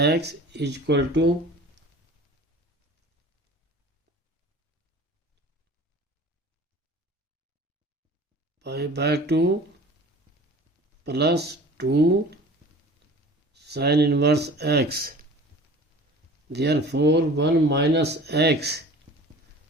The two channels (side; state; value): both; normal; correlation 0.43